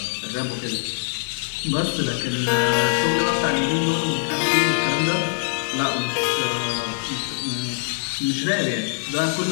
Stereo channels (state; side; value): silent; right; digital silence